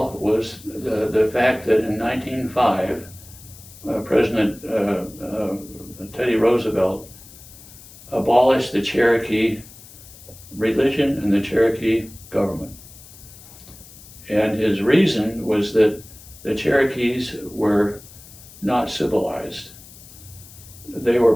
was the fact that in 1905, President Teddy Roosevelt abolished the Cherokee religion and the Cherokee government. And his reason was that the Cherokees were not civilized. They were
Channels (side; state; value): left; noise; hiss, 20 dB below the sound